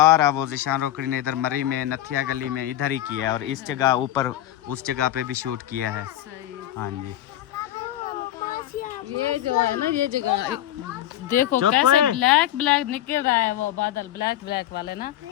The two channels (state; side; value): quieter; right; 13.1 dB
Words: वो ज़ीशान रोकड़ी ने इधर मरी में नथिया गली में इधर ही किया है और इस जगह ऊपर उस जगह पे भी शूट किया है। सही है। हाँ जी, ये जो है ना ये जगह देखो चुप कैसे है। ब्लैक ब्लैक निकल रहा है वो बादल ब्लैक ब्लैक वाले ना